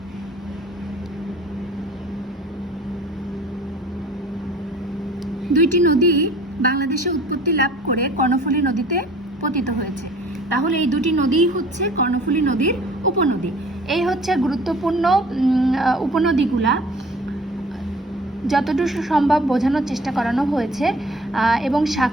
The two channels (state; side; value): normal; both; correlation 0.49